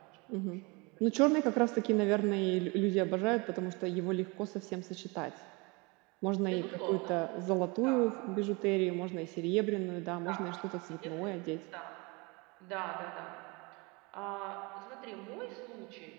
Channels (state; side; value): quieter; left; 27.7 dB